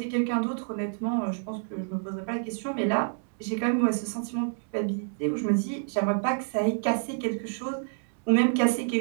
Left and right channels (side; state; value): left; silent; digital silence